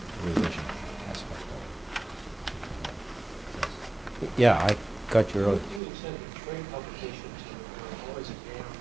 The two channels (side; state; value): left; drops out; at 5.8 s